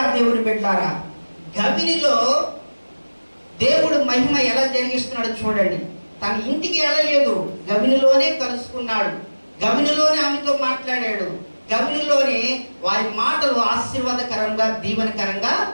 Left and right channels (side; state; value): both; inverted; correlation -1.00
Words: దేవుని బిడ్డలారా, గవినిలో దేవుడు మహిమ ఎలా జరిగిస్తున్నాడు చూడండి. తన ఇంటికి వెళ్ళలేదు, గవినిలోనే కలుసుకున్నాడు, గవినిలోనే ఆమెతో మాట్లాడాడు, గవినిలోనే వారి మాటలు ఆశీర్వాదకరంగా దీవెనకరంగా